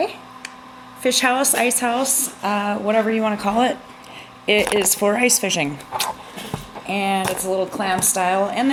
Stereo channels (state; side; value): identical; both; correlation 1.00